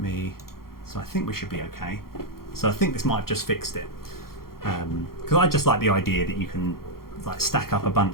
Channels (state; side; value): late; right; 0.93 ms